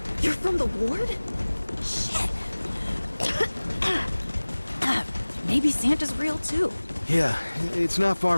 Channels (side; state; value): both; inverted; correlation -1.00